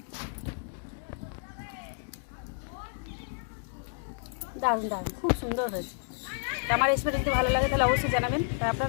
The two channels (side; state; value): right; silent; digital silence